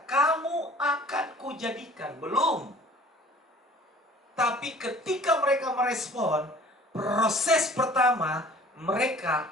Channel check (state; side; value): normal; both; correlation 0.49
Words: "Kamu akan kujadikan." Belum. Tapi ketika mereka merespon, proses pertama,